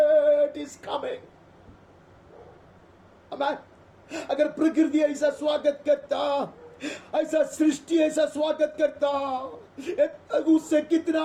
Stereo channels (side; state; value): both; identical; correlation 1.00